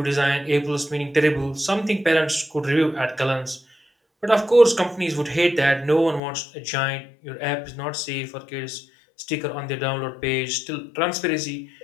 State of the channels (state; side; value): drops out; right; at 6.2 s